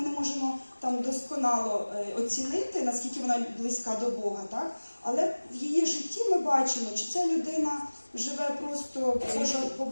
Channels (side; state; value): both; inverted; correlation -1.00